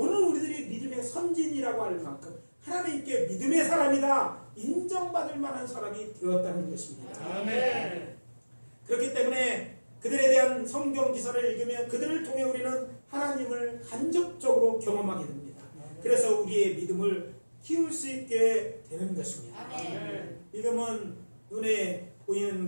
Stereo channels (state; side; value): inverted; both; correlation -1.00